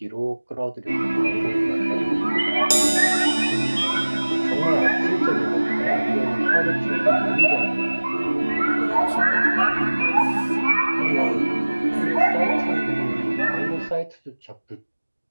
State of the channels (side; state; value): both; inverted; correlation -1.00